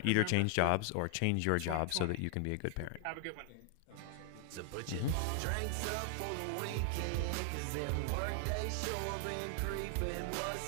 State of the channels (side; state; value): both; different; correlation 0.00